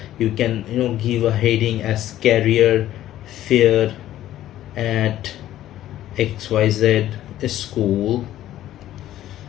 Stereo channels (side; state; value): right; quieter; 13.2 dB